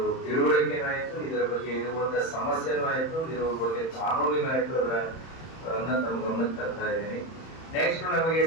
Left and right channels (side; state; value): right; late; 31 ms